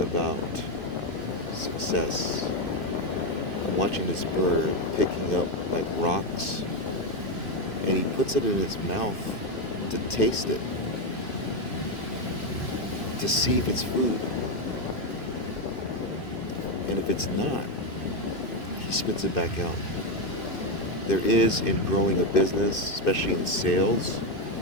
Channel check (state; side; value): late; right; 2.5 ms